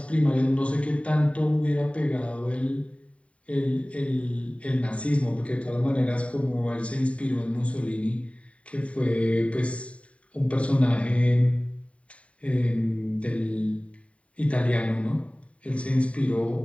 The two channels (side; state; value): right; late; 0.064 ms